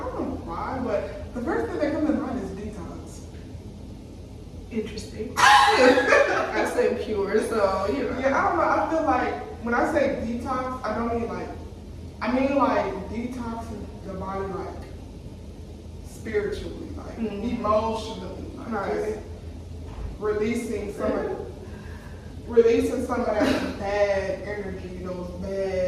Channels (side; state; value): both; identical; correlation 1.00